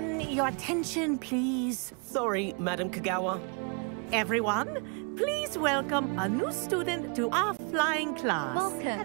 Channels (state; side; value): quieter; left; 36.0 dB